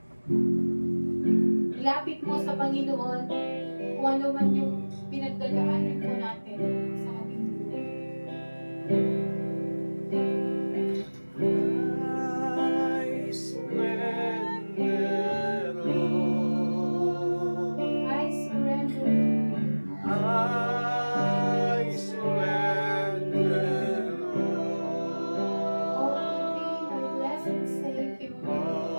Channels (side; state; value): both; inverted; correlation -1.00